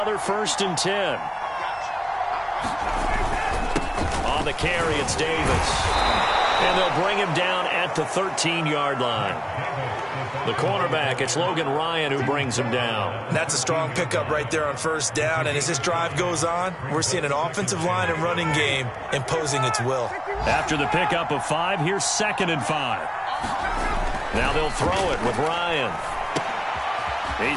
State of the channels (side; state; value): both; identical; correlation 1.00